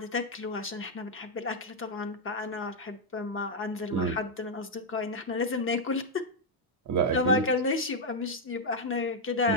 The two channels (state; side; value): normal; both; correlation -0.01